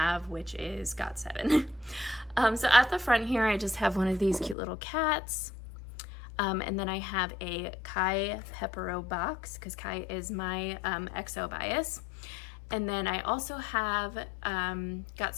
which is GOT7. So at the front here, I just have one of these cute little cats. And then I have a Kai Pepero box, because Kai is my EXO bias. And then I also have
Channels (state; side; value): drops out; right; at 4.5 s